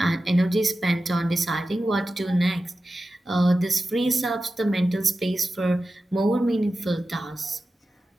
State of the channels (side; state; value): both; normal; correlation 0.93